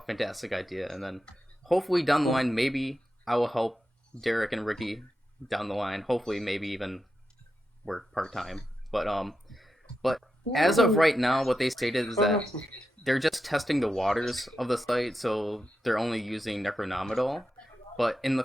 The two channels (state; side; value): normal; both; correlation 0.88